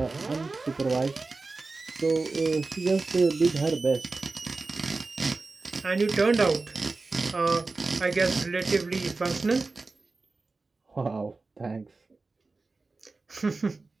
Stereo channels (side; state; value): left; quieter; 3.7 dB